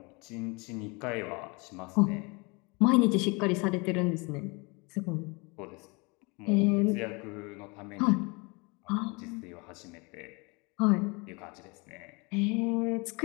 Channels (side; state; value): right; quieter; 28.7 dB